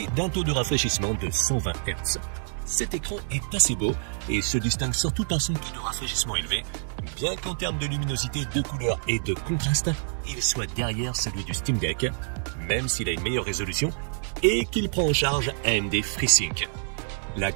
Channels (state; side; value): silent; left; digital silence